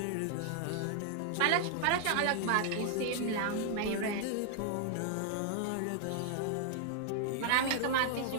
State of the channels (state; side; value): different; both; correlation 0.00